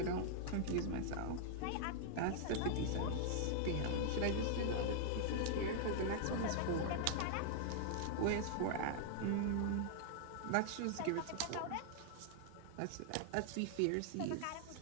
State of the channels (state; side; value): different; both; correlation -0.01